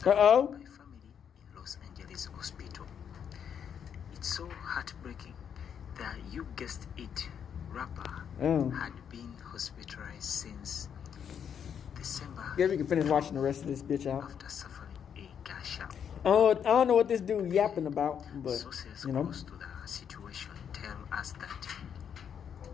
Uh-oh. By family in Los Angeles hospital. It's so heartbreaking that you guessed it, rapper had been hospitalized since December. Guess we can finish watching the rest of this bitch out. After suffering a gunshot. I don't know what this dude yapping about, but Sources you know. close to the situation tell us that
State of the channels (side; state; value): right; quieter; 8.0 dB